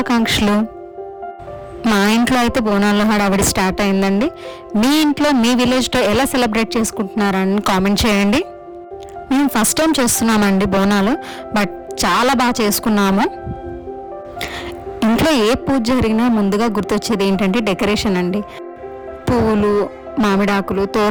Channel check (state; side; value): identical; both; correlation 1.00